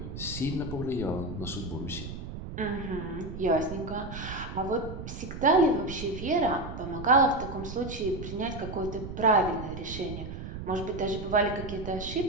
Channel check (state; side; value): noise; right; rumble, 8 dB below the sound